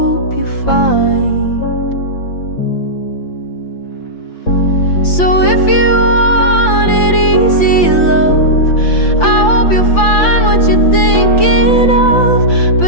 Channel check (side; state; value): right; late; 5.8 ms